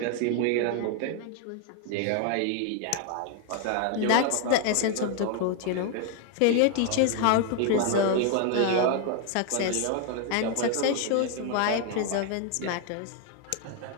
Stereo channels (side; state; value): both; different; correlation 0.00